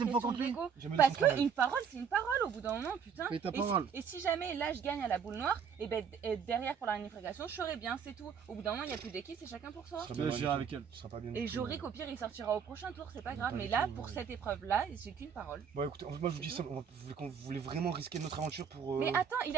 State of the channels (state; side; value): quieter; left; 7.0 dB